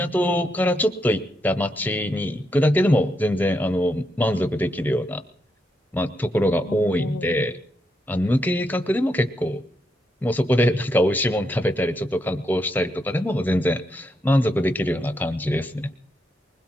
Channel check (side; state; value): both; normal; correlation 0.81